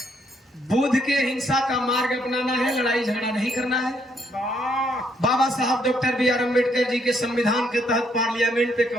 बुद्ध के हिंसा का मार्ग अपनाना है, लड़ाई झगड़ा नहीं करना है। बाबा साहब doctor B are Ambedkar ji के संविधान के तहत पार्लियामेंट पे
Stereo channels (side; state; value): both; normal; correlation 0.72